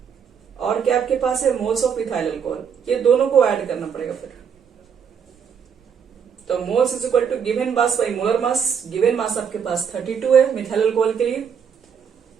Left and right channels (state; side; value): quieter; left; 7.2 dB